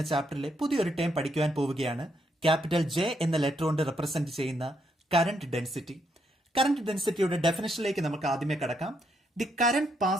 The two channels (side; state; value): both; normal; correlation 0.76